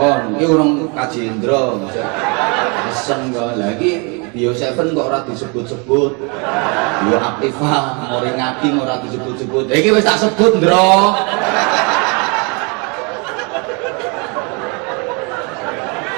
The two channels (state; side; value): quieter; left; 32.7 dB